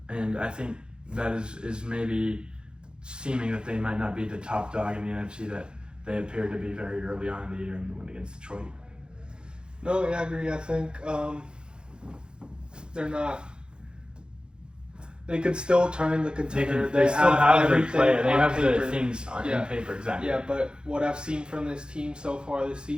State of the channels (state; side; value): late; left; 0.049 ms